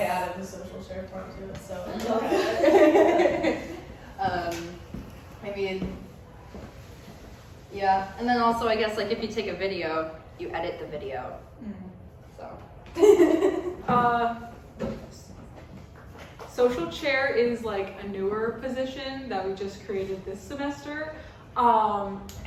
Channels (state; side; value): identical; both; correlation 1.00